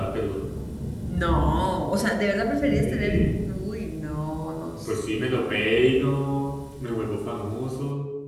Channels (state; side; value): identical; both; correlation 1.00